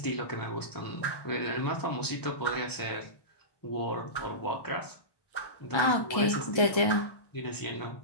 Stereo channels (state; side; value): late; right; 1.1 ms